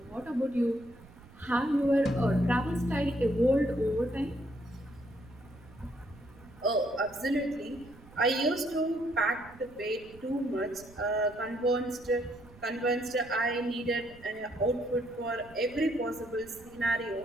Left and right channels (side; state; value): right; noise; rumble, 22 dB below the sound